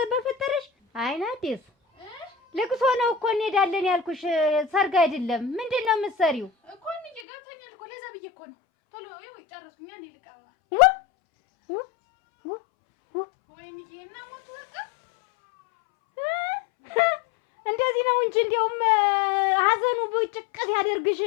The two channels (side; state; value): right; drops out; at 7.2 s